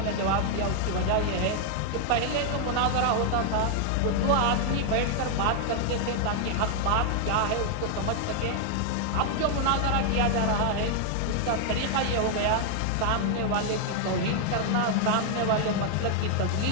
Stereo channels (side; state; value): both; different; correlation 0.00